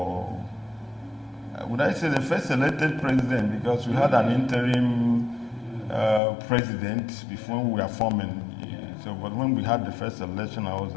would I say the first elected president, because we had an interim president before we were forming. So, but when we had the first election, I was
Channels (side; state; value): right; drops out; at 6.2 s